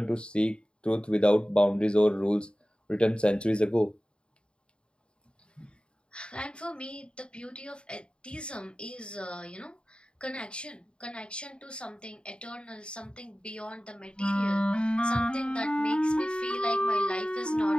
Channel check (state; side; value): late; right; 0.053 ms